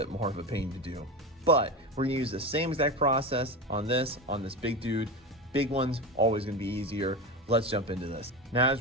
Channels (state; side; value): normal; both; correlation 0.23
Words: more of a pain to do. But we're gonna use the same exact process on this big dude. Big one's always gonna be easier. Let's jump into this. Now,